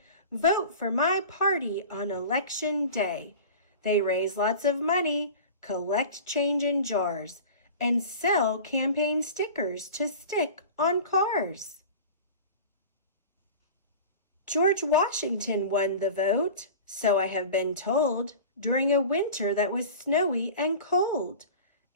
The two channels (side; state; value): both; inverted; correlation -0.36